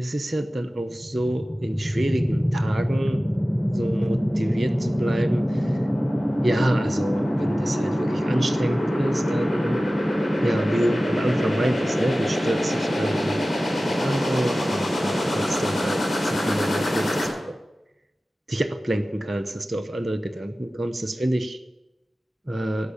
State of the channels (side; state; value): both; normal; correlation 0.96